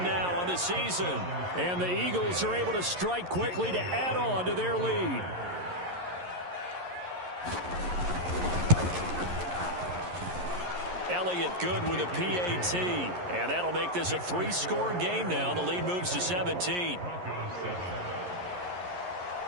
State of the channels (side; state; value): left; late; 11 ms